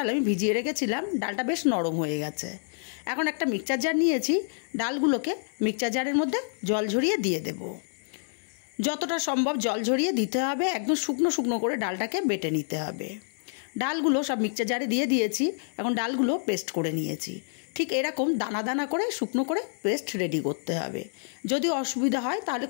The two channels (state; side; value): silent; right; digital silence